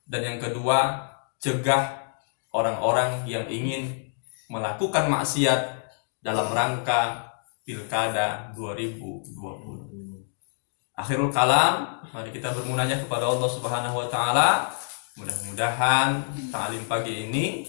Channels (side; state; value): right; silent; digital silence